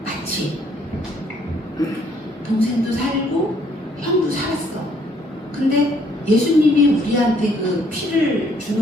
마치 동생도 살고 형도 살았어. 근데 예수님이 우리한테 그 피를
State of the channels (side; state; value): both; normal; correlation 0.66